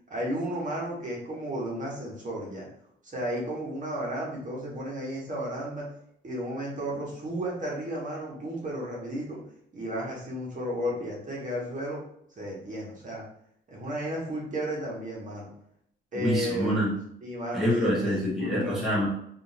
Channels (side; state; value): both; normal; correlation 0.55